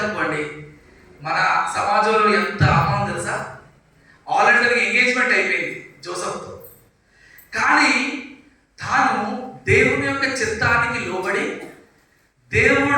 మన సమాజంలో ఎంత అవమానం తెలుసా. ఆల్రెడీ తనకి ఎంగేజ్మెంట్ అయిపోయింది జోసెఫ్తో, కానీ తాను దేవుని యొక్క చిత్తానికి లోబడి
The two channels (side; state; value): both; identical; correlation 1.00